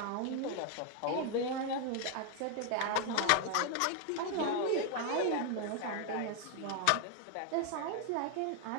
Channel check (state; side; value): different; both; correlation 0.00